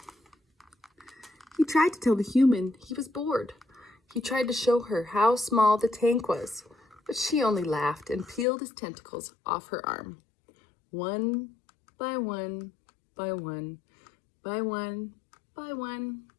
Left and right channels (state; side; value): drops out; right; at 8.5 s